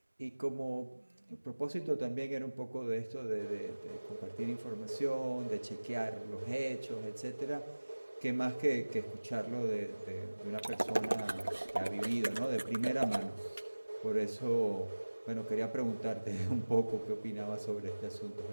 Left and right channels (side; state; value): both; inverted; correlation -1.00